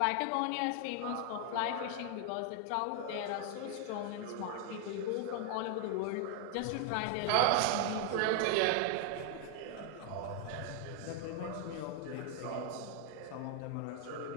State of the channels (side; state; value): both; different; correlation 0.00